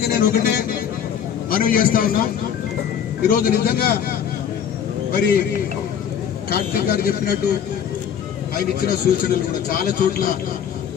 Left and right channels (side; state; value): right; quieter; 8.5 dB